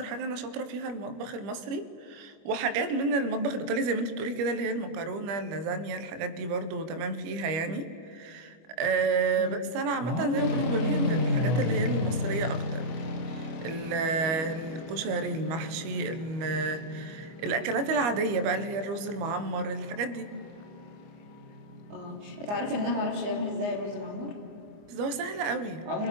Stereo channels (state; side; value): late; left; 25 ms